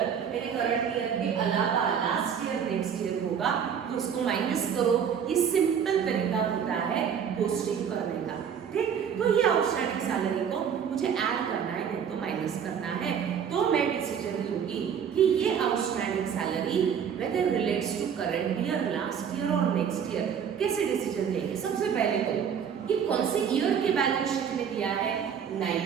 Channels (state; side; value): quieter; left; 7.7 dB